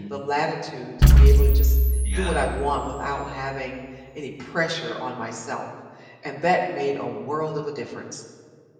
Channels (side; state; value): both; identical; correlation 1.00